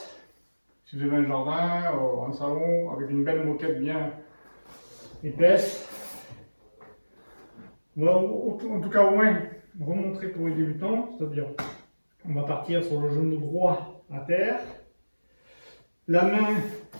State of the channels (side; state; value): both; inverted; correlation -1.00